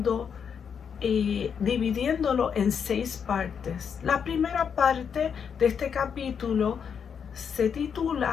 y dividiéndolo en 6 partes. La primera parte de este capítulo se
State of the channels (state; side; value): quieter; right; 7.1 dB